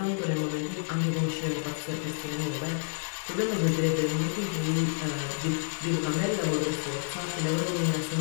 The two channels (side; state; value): right; silent; digital silence